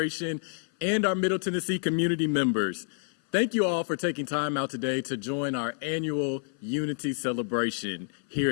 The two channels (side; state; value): right; silent; 56 dB below the other